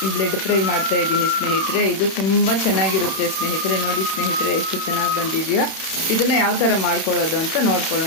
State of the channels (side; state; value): right; late; 31 ms